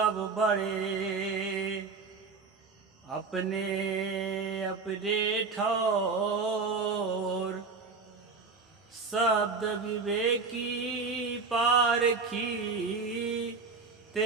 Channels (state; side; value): quieter; left; 4.6 dB